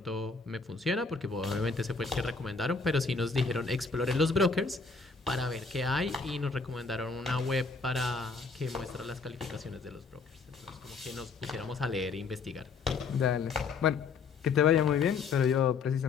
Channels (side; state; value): right; quieter; 4.7 dB